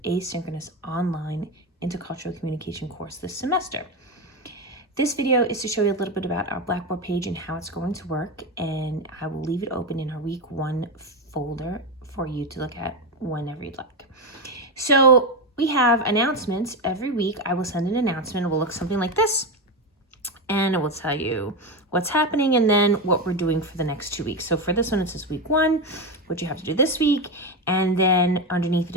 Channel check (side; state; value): both; normal; correlation 0.14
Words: Asynchronous Online Intercultural Communication course this semester. This video is to show you a little bit about our Blackboard page and how it's going to work, and I will leave it open in our week 1 folder for you to look at whenever you'd like. So we have announcements every week. I will send an announcement. It will look something like this, and it will tell you what's happening and then what we're doing for the next 2 weeks. So for this one, it says week 1, what you have to do this week, and then underneath it